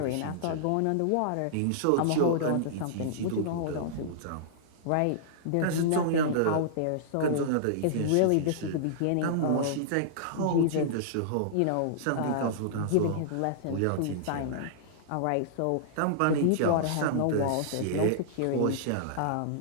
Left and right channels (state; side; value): different; both; correlation -0.02